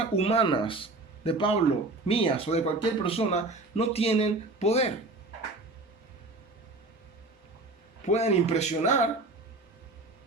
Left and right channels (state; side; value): quieter; left; 3.1 dB